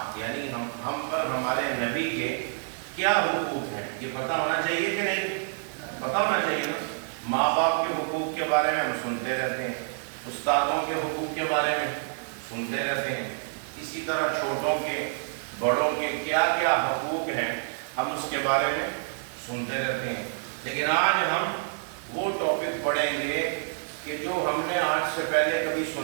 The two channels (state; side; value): silent; left; digital silence